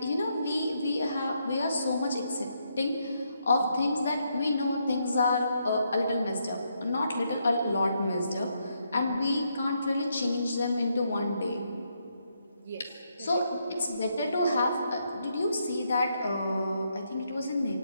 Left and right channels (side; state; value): both; inverted; correlation -0.78